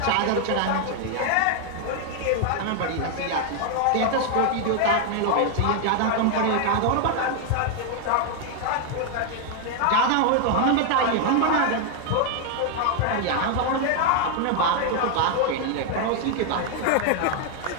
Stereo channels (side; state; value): both; different; correlation 0.00